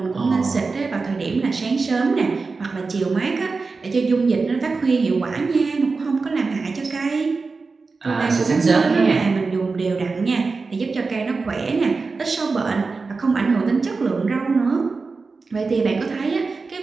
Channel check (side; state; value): left; quieter; 4.2 dB